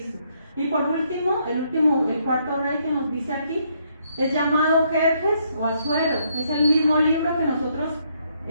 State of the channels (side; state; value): both; inverted; correlation -0.72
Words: Y por último, el cuarto rey que nos dice aquí, es llamado Jerjes o Asuero. Es el mismo libro